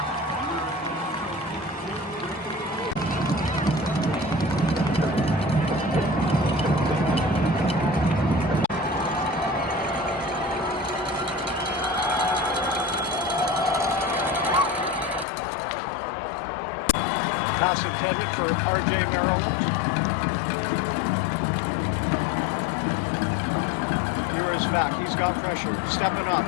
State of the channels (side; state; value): right; drops out; at 15.2 s